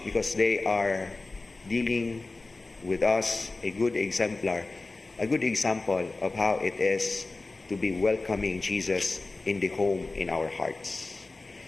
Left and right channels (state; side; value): quieter; right; 3.3 dB